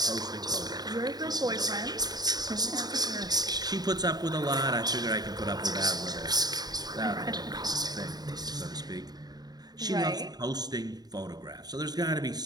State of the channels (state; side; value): late; left; 0.19 ms